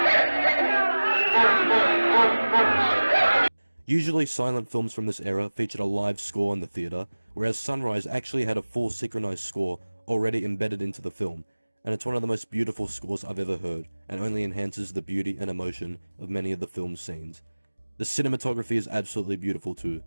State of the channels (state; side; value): inverted; both; correlation -1.00